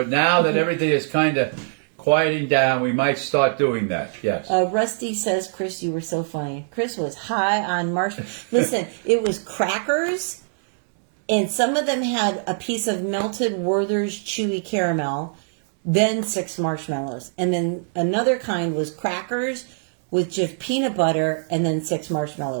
now that everything is kind of quieting down, we might start doing that. Yes. Rusty says, Chris, you were so funny. Chris was high on marshmallows. Listen, it was crackers, and some of them had a piece of melted Werther's chewy caramel, then 6 marshmallows. And then another kind was crackers with just peanut butter and then 6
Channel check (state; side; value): silent; left; digital silence